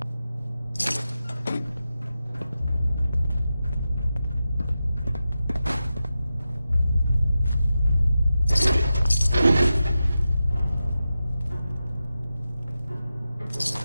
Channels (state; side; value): inverted; both; correlation -0.91